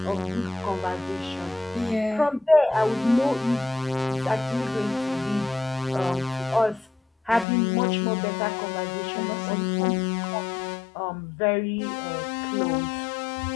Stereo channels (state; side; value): drops out; right; at 7.5 s